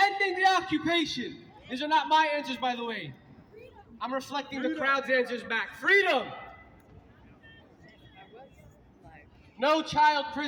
the occupation. These are not my answers, by the way. I'm reflecting the crowd's answers back. Freedom. No child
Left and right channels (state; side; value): identical; both; correlation 1.00